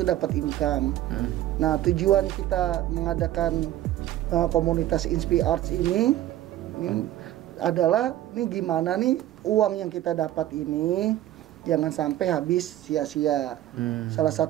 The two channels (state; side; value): quieter; left; 13.5 dB